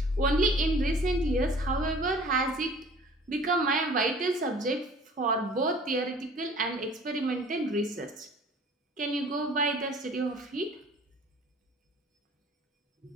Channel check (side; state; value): both; normal; correlation 0.49